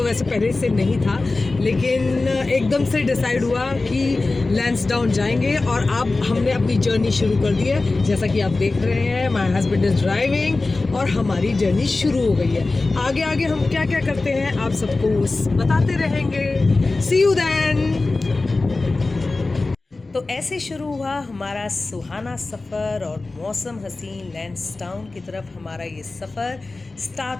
वैसे पहले से नहीं था, लेकिन एकदम से डिसाइड हुआ कि लैंसडाउन जाएंगे और अब हमने अपनी जर्नी शुरू कर दी है। जैसा कि आप देख रहे हैं, माय हस्बैंड इज ड्राइविंग और हमारी जर्नी शुरू हो गई है। आगे आगे हम क्या क्या करते हैं आप सबको बताते रहेंगे। सी यू देन। तो ऐसे शुरू हुआ हमारा सुहाना सफ़र और मौसम हसीन लैंसडाउन की तरफ हमारा ये सफ़र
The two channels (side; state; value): right; quieter; 3.4 dB